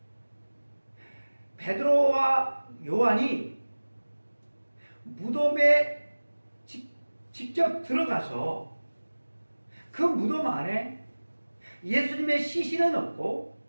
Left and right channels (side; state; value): both; inverted; correlation -1.00